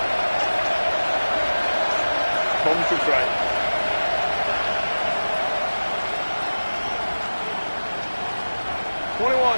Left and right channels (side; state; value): both; inverted; correlation -1.00